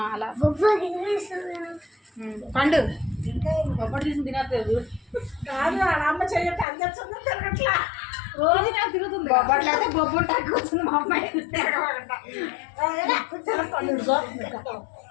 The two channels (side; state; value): right; drops out; at 6.7 s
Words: అలా పండు బొబ్బట్లు తీసి తినట్లేదు కాదు. అమ్మ చెయ్యట్టు అందరు తిరగట్లా, రోజు నాకు తిరుగుతుంది. బొబ్బట్లు అయితే బొబ్బట్లు కూర్చుంది మా అమ్మాయి.